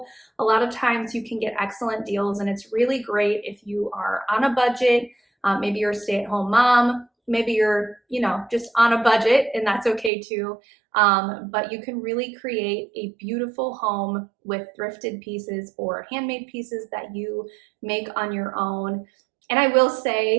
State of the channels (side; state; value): left; drops out; at 10.1 s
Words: A lot of times you can get excellent deals, and it's really great if you are on a budget. Maybe you're a stay-at-home mom. Maybe you're, just on a budget, and that's okay too. But you can really create a beautiful home with thrifted pieces or handmade pieces that you make on your own. And I will